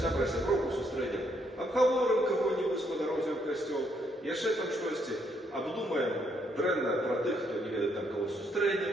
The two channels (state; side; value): normal; both; correlation 0.73